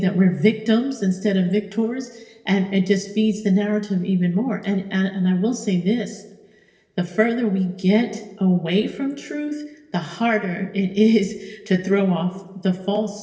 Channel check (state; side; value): identical; both; correlation 1.00